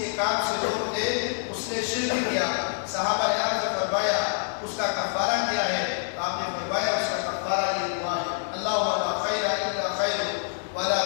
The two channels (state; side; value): silent; right; digital silence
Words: کام سے روک دے اس نے شرک کیا۔ صحابہ نے عرض فرمایا اس کا کفارہ کیا ہے؟ آپ نے فرمایا اس کا کفارہ یہ دعا ہے اللہم لا خیر الا خیر ولا